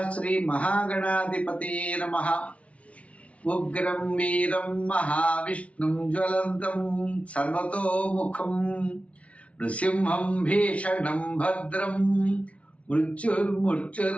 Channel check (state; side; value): late; right; 0.064 ms